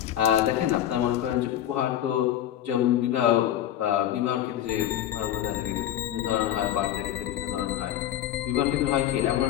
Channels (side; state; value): right; quieter; 11.7 dB